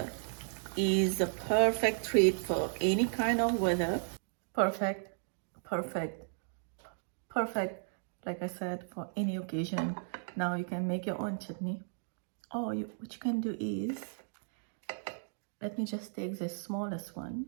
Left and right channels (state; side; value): silent; left; digital silence